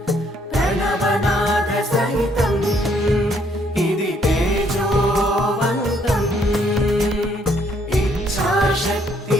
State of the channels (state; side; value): normal; both; correlation 0.68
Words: ప్రణవనాద సహితం ఇది తేజోవంతం ఇచ్ఛాశక్తి